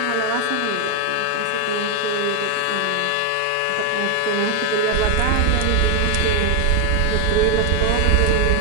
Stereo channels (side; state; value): both; different; correlation 0.01